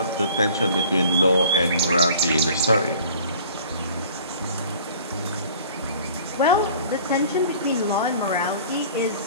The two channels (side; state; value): both; inverted; correlation -0.48